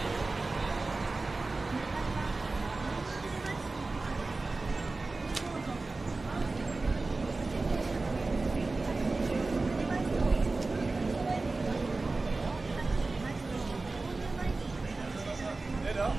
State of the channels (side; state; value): left; quieter; 3.5 dB